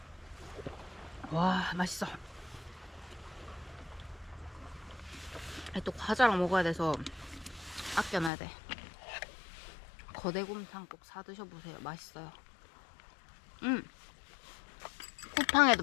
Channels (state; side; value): drops out; right; at 8.3 s